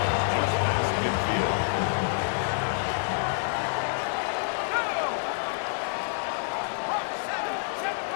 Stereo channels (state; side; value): silent; right; digital silence